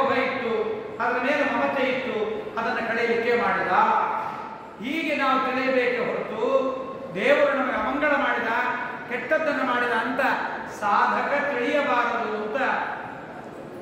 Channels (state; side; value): identical; both; correlation 1.00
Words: ಇತ್ತು, ಅದರ ಮೇಲೆ ಮಮತೆ ಇತ್ತು, ಅದನ್ನು ಕಳೆಯಲಿಕ್ಕೆ ಮಾಡಿದ. ಹೀಗೆ ನಾವು ತಿಳಿಯಬೇಕೆ ಹೊರತು ದೇವರು ನಮಗೆ ಅಮಂಗಳ ಮಾಡಿದ, ಕೆಟ್ಟದ್ದನ್ನು ಮಾಡಿದ ಅಂತ ಸಾಧಕ ತಿಳಿಯಬಾರದು ಅಂತ